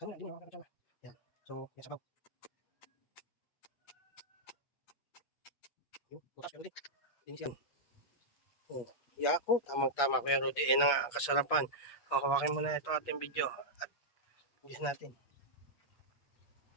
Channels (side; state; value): right; late; 8.4 ms